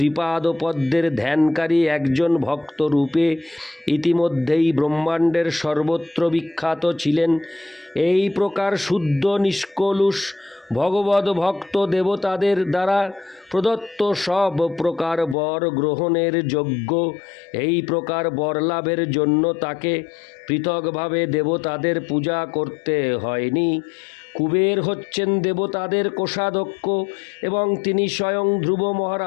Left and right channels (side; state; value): right; drops out; at 15.4 s